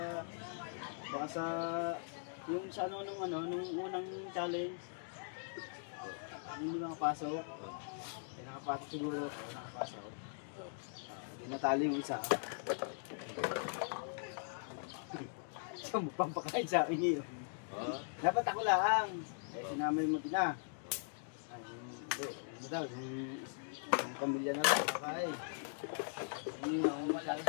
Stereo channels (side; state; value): right; silent; digital silence